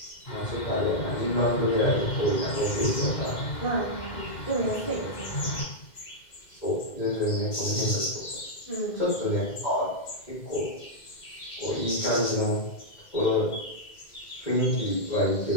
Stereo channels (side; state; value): right; late; 2.1 ms